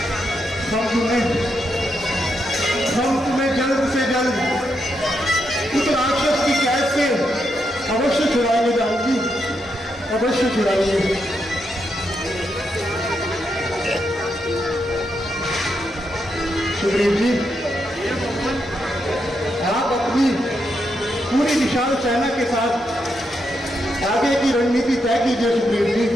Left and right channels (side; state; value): both; normal; correlation 0.82